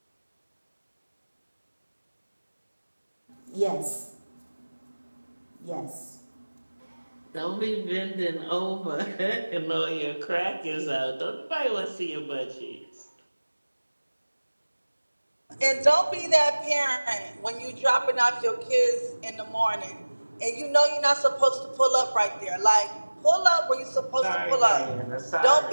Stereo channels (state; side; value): inverted; both; correlation -1.00